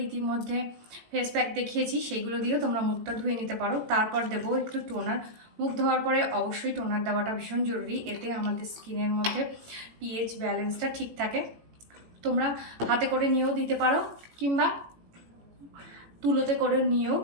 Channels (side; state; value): left; late; 18 ms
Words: ইতিমধ্যে ফেস প্যাক দেখিয়েছি, সেইগুলো দিয়েও তোমরা মুখটা ধুয়ে নিতে পারো। তারপর দেবো একটু টোনার। মুখ ধোয়ার পরে অবশ্যই টোনার দেওয়াটা ভীষণ জরুরি, এতে আমাদের স্কিনের মধ্যে পিএইচ ব্যালেন্সটা ঠিক থাকে। তোমরা হাতে করে নিয়েও দিতে পারো কিংবা তুলোতে করে নিয়েও